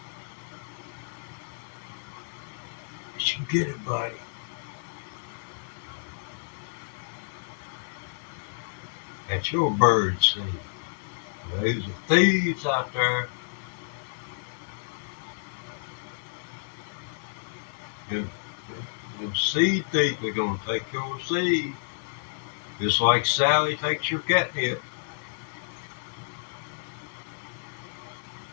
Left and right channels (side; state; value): right; silent; digital silence